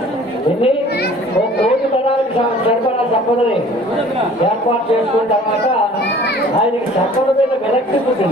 ఎన్ని 1 కోటి తరాలకు సరిపడా సంపదని ఏర్పాటు చేసుకున్న తర్వాత ఆయనకి సంపద మీద విరక్తి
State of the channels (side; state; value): both; normal; correlation 0.50